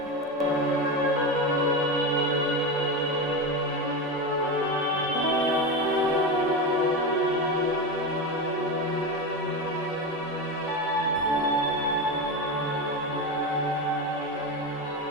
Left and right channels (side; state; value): both; normal; correlation 0.18